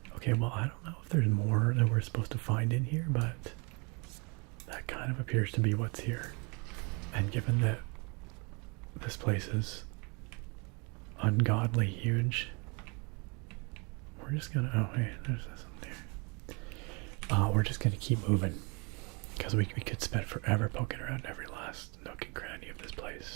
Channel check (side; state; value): left; quieter; 31.7 dB